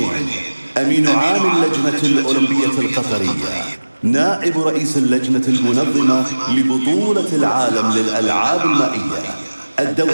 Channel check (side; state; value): both; inverted; correlation -1.00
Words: أمين عام اللجنة الأولمبية القطرية، نائب رئيس اللجنة المنظمة لبطولة العالم للألعاب المائية